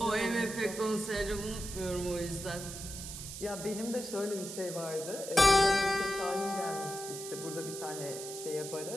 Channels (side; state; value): right; noise; hiss, 9 dB below the sound